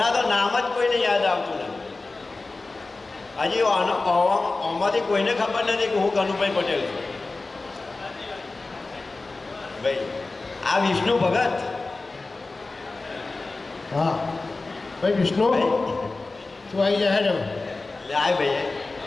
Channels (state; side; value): quieter; right; 3.5 dB